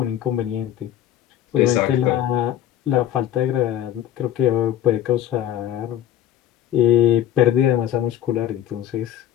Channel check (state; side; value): quieter; right; 11.4 dB